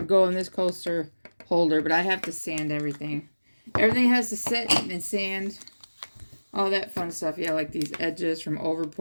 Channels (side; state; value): both; inverted; correlation -1.00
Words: go in this coaster holder. But I have to sand everything. Everything has to sit and sand. All that fun stuff. Yeah, like these edges from